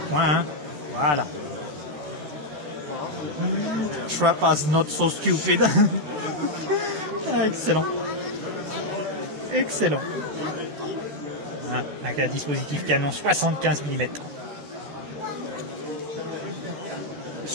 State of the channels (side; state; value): left; late; 13 ms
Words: Hein. Voilà. Trappers not so stupid. Ah, excellent. Voilà, avec un dispositif canon 75 mm.